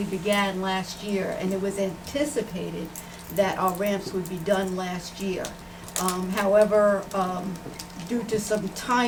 began last year, and it was anticipated that our ramps would be done last year. However, due to some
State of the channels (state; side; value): identical; both; correlation 1.00